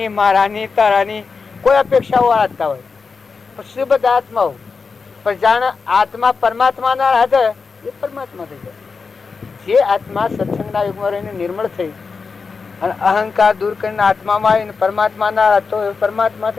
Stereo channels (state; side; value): quieter; right; 4.9 dB